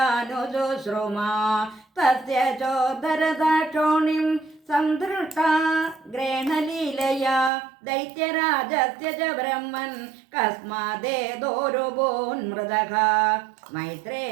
തസ്യ ചോദരദാക്ഷോണിം സംധൃഷ്ടാ ഗ്രേണലീലയാ ദൈത്യരാജസ്യ ച ബ്രഹ്മൻ കസ്മാദേതോരുഭൂന്മൃതഃ.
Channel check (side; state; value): left; drops out; at 7.5 s